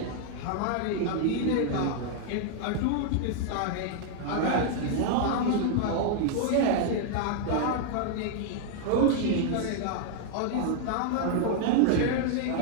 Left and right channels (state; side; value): different; both; correlation -0.01